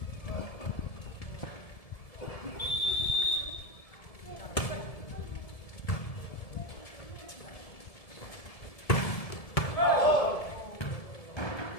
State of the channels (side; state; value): right; late; 1.7 ms